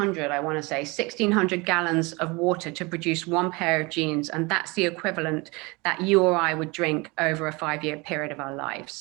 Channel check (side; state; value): left; quieter; 25.9 dB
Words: I want to say, 1,600 gallons of water to produce one pair of jeans. And that's the equivalent that you or I would drink over a 5-year period of our